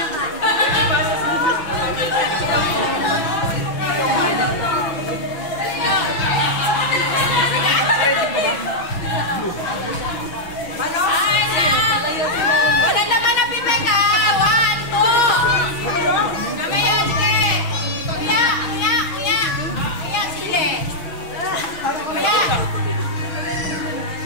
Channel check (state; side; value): late; right; 6.1 ms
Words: Wala naman na pipek ha. 1, 2. Mamaya, sige. Kuya, sili. Kuya.